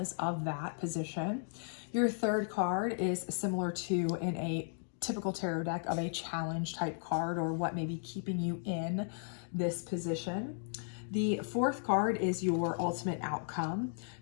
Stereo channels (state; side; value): silent; right; digital silence